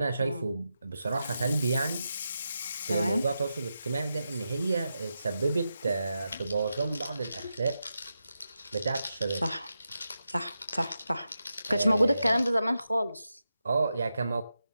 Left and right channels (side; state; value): both; inverted; correlation -0.88